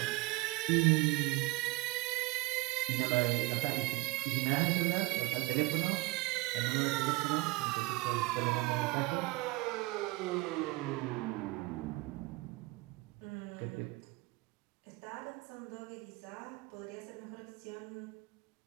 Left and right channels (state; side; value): quieter; left; 22.3 dB